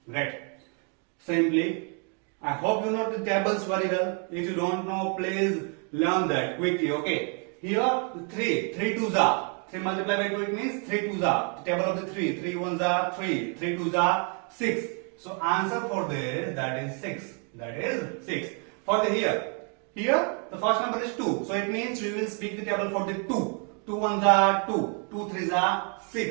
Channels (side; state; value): left; quieter; 39.3 dB